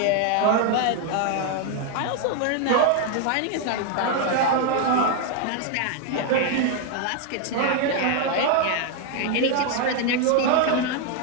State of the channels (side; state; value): both; different; correlation 0.00